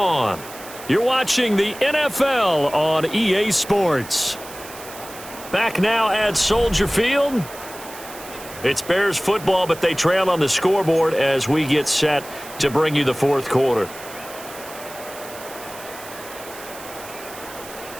You're watching the NFL on EA Sports. Back now at Soldier Field. It's Bears football, but they trail on the scoreboard as we get set to bring you the fourth quarter.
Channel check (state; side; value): noise; right; hiss, 15 dB below the sound